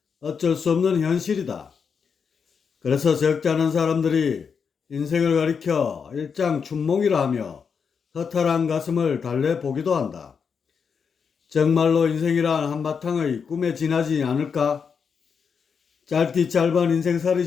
어쩔 수 없는 현실이다. 그래서 적지 않은 사람들이 인생을 가리켜 일장춘몽이라 하며 허탈한 가슴을 달래보기도 한다. 정말로 인생이란 한바탕의 꿈에 지나지 않을까? 짧디 짧은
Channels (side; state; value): right; quieter; 6.2 dB